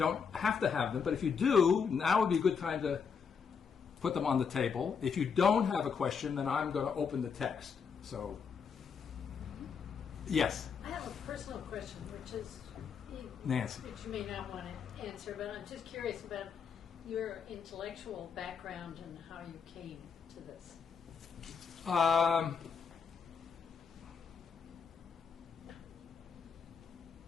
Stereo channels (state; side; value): quieter; right; 6.3 dB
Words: have to have them, but if you do, now would be a good time to put them on the table. If you don't have a question, then I'm going to open the text. So, yes? I have a personal question, which is, Nancy. Which you may not want to answer, but I'm just curious about your intellectual background and how you came to this.